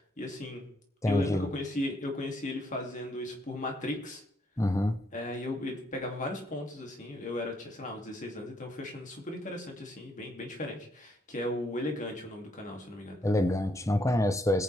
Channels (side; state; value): both; normal; correlation 0.73